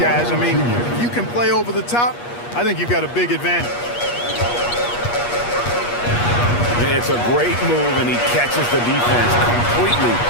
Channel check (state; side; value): late; right; 8.4 ms